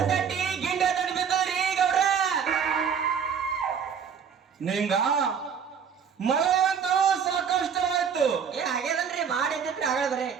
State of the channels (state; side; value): quieter; left; 7.2 dB